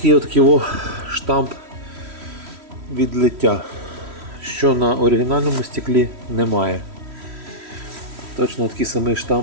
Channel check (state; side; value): late; left; 3.1 ms